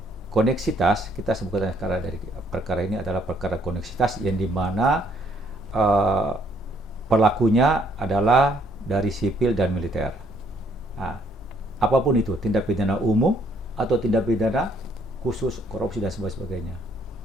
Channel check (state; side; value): normal; both; correlation 0.67